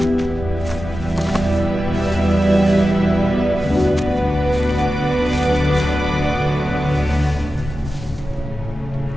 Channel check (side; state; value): both; normal; correlation 0.93